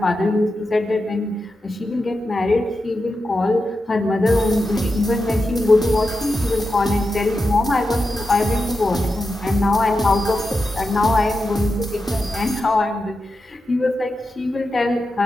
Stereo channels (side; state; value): both; normal; correlation 0.89